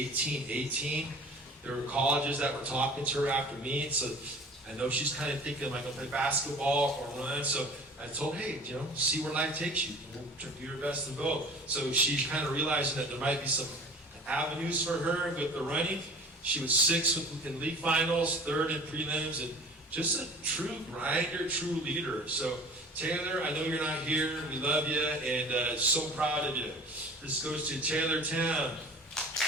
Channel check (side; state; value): both; normal; correlation 0.43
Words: There were colleges that were talking to her after meet, so I know she's kind of thinking, am I going to play basketball or run? So I told her, hey, see where life takes you. Do your best in both. So she's kind of realizing that there might be some avenues for her with the running. She was 6th in league finals, 3rd in prelims, and just a true grinder, true leader. So Taylor, I know you're not here. We love you, and so proud of you. This goes to Taylor Tam.